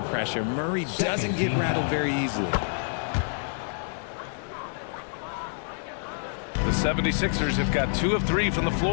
pressure. Murray doesn't get rattled very easily. The 76ers have got 2 of 3 from the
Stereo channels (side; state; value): right; silent; digital silence